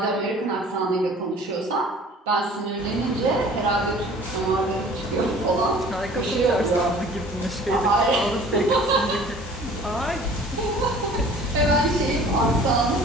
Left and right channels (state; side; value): normal; both; correlation 0.48